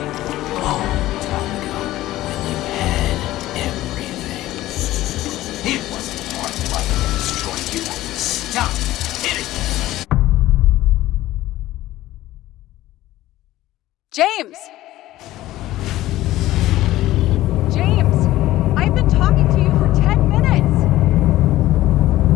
long time ago when you had everything. It wasn't hard luck to destroy you. Stop hitting me. James! James! I've been talking to you for 10 minutes!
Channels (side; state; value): right; quieter; 15.7 dB